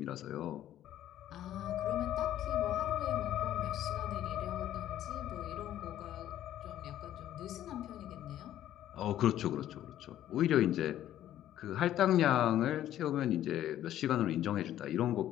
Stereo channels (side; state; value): right; quieter; 12.3 dB